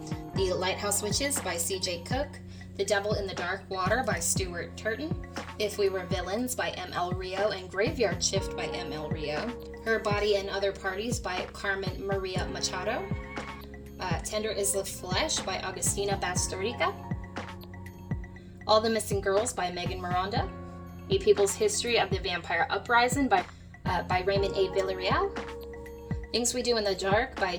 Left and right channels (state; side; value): identical; both; correlation 1.00